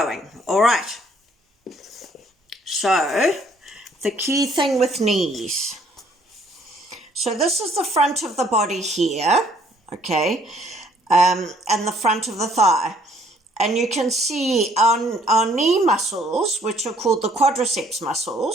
All right. So the key thing with knees. So this is the front of the body here, okay, and the front of the thigh. And you can see our knee muscles, which are called the quadriceps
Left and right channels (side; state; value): both; normal; correlation 0.63